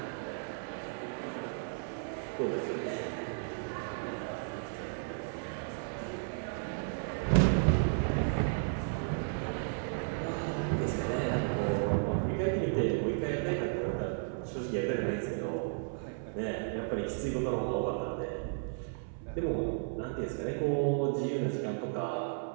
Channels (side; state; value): left; silent; 55 dB below the other